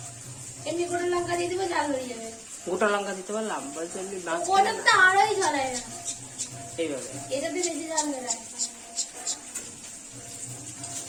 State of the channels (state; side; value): identical; both; correlation 1.00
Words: এমনি গোটা লঙ্কা দিয়ে দিবো, ঝাল হয়ে যাবে। গোটা লঙ্কা দিতে পারলাম, বলছে এমনি ওটা তো আরোই ঝালায় না। এইভাবে এটাতে বেশি ঝাল দেয়।